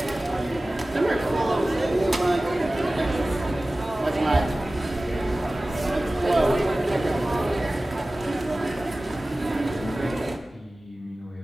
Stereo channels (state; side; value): normal; both; correlation 0.97